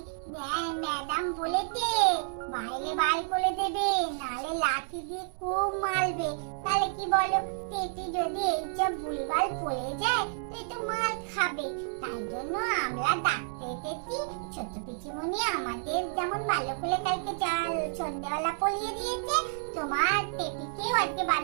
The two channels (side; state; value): left; silent; digital silence